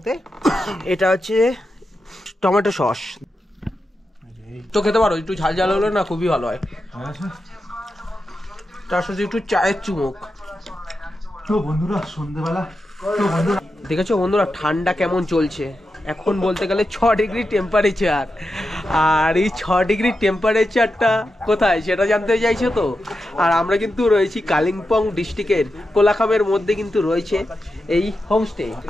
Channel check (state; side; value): normal; both; correlation 0.89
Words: এটা হচ্ছে টমেটো সস। তো খেতে পারো, একটু ঝাল ঝাল হলে না খুবই ভালো হয়, তার সাথে একটু চায়ের চুমুক। তো বন্ধুরা সন্ধ্যেবেলা দেখেছো বন্ধুরা ঠান্ডা কেমন চলছে, এখন বলতে গেলে 6 ডিগ্রি টেম্পারেচার। আর এই 6 ডিগ্রি টেম্পারেচারটা কোথায় সেটা জানতে চাইছো তো? আর আমরা কিন্তু রয়েছি কালিম্পং ডিস্ট্রিক্টের কোলাখামের মধ্যে কিন্তু রয়েছে এই হোমস্টে।